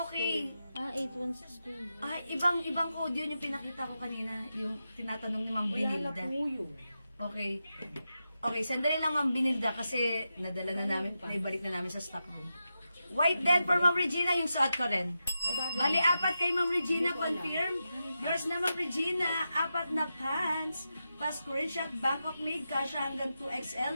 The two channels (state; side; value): inverted; both; correlation -0.89